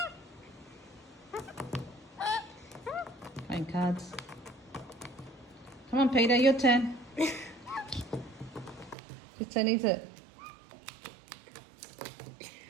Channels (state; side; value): drops out; left; at 9.0 s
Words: Playing cards. Come on, Peter, your turn. Whose turn is it?